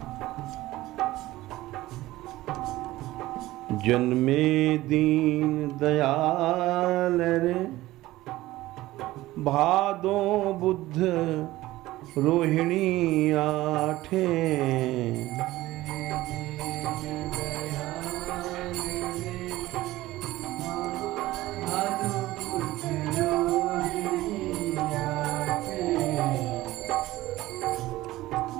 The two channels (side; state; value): left; quieter; 17.1 dB